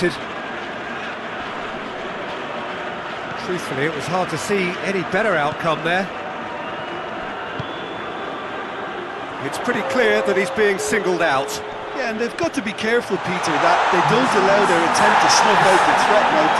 Truthfully, it was hard to see any better outcome there. It's pretty clear that he's being singled out. Yeah, and they've got to be careful, Peter, that they don't allow their attempt to snuff out the threat now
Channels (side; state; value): both; identical; correlation 1.00